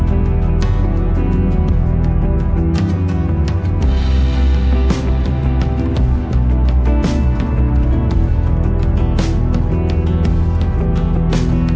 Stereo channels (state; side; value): identical; both; correlation 1.00